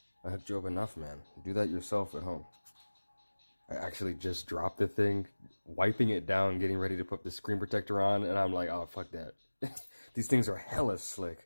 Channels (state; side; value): inverted; both; correlation -1.00